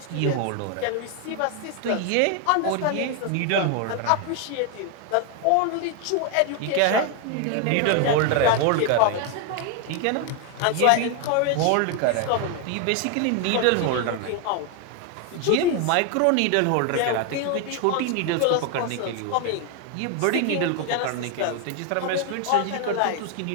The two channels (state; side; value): different; both; correlation 0.01